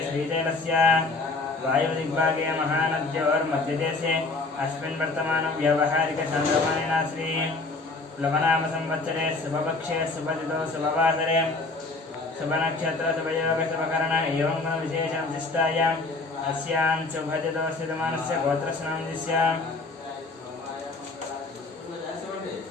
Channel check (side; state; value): right; quieter; 3.5 dB